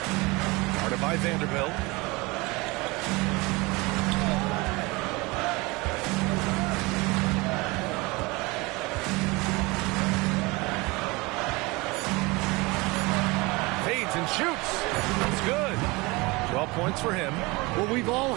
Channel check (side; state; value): left; quieter; 24.4 dB